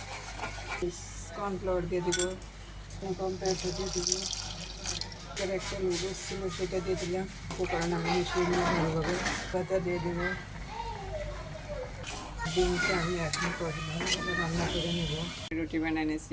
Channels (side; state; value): both; identical; correlation 1.00